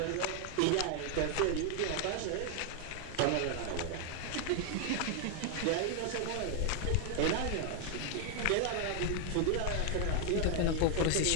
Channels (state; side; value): different; both; correlation 0.00